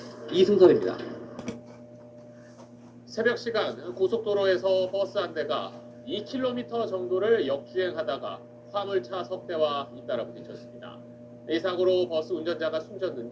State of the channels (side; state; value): both; identical; correlation 1.00